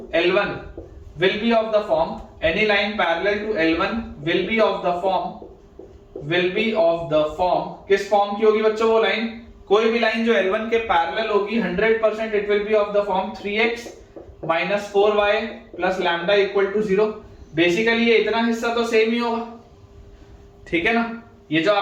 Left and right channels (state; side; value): identical; both; correlation 1.00